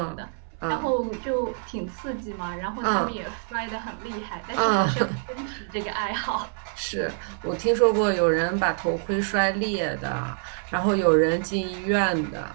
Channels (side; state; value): left; silent; 61 dB below the other